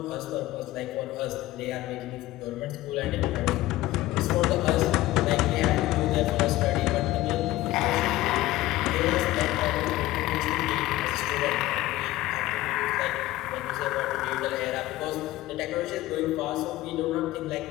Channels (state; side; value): quieter; right; 16.6 dB